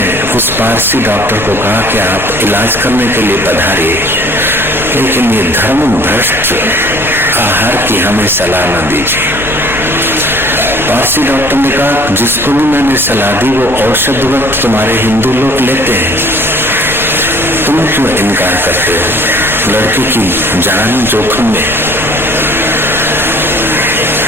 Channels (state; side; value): noise; left; rumble, 14 dB below the sound